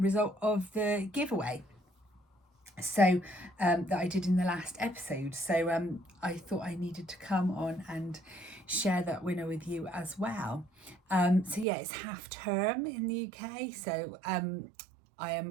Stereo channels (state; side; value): drops out; left; at 11.7 s